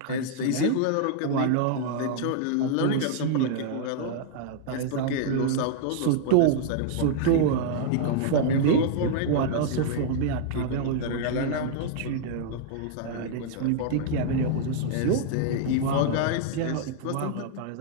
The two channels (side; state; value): both; different; correlation -0.01